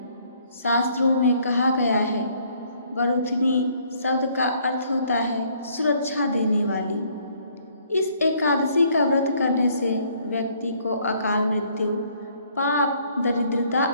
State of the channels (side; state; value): both; inverted; correlation -0.64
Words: शास्त्रों में कहा गया है, वरुथनी शब्द का अर्थ होता है सुरक्षा देने वाली। इस एकादशी का व्रत करने से व्यक्ति को अकाल मृत्यु, पाप, दरिद्रता